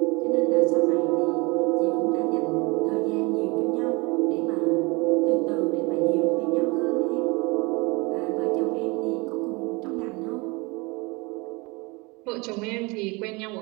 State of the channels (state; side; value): quieter; left; 26.8 dB